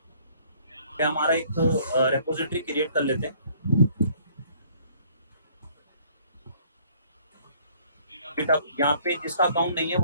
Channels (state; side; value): inverted; both; correlation -0.59